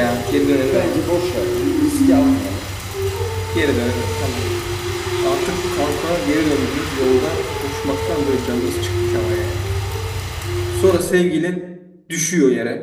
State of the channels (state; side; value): identical; both; correlation 1.00